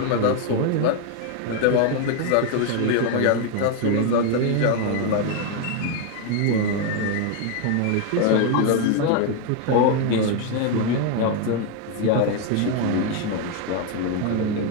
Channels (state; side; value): different; both; correlation 0.01